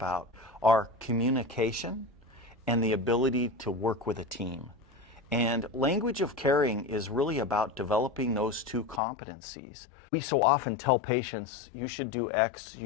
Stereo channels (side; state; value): right; drops out; at 9.0 s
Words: are communication and the ability to work with a team. And language of caring is really about developing those two competencies. We so often tell patients, you should do X,